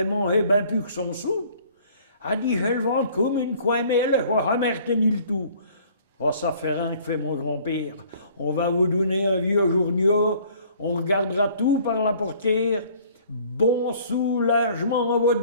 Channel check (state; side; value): inverted; both; correlation -0.55